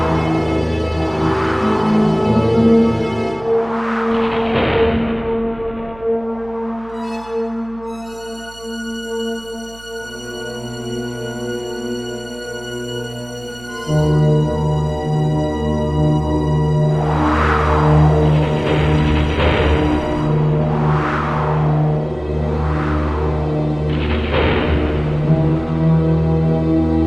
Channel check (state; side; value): noise; right; hum, 21 dB below the sound